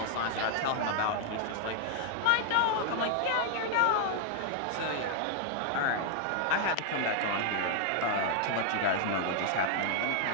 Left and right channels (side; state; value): both; different; correlation 0.00